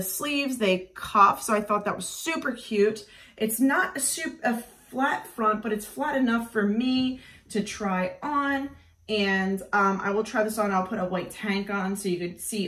sleeves, they cuff, so I thought that was super cute. It's not a flat front, but it's flat enough for me to try on. And I will try this on. I'll put a white tank on so you could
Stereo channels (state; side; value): identical; both; correlation 1.00